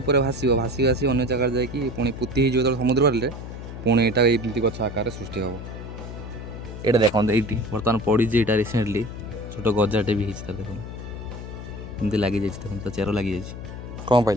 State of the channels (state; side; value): noise; left; hum, 10 dB below the sound